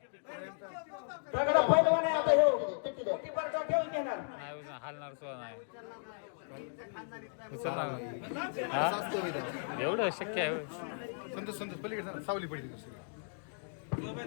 सगळं पैलवान आहे आता ह्यो. किती बरका ठेवून घेणार. नाही उचल- हालणार सुद्धा नाही. उचल ना. हा? एवढं शक्य आहे होय? संतोष पलीकडे सावली पडली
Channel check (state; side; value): silent; right; digital silence